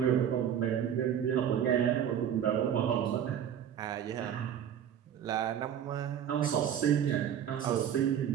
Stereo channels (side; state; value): left; quieter; 9.3 dB